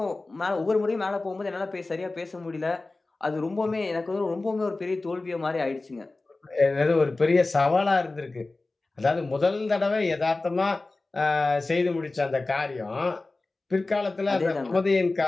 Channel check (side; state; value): right; quieter; 3.3 dB